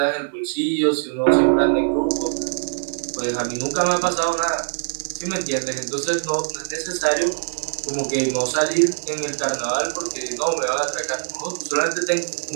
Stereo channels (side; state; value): left; silent; digital silence